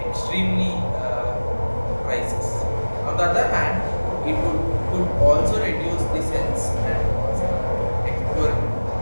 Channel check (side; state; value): both; inverted; correlation -1.00